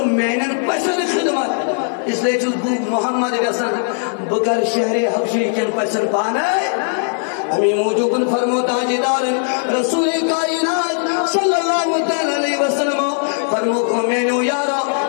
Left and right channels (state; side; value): silent; right; 67 dB below the other